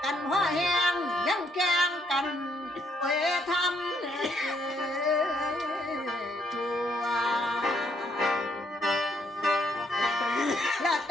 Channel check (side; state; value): both; normal; correlation 0.72